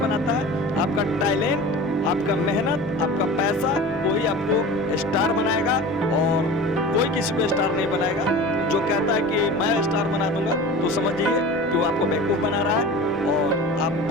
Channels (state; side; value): noise; left; rumble, 23 dB below the sound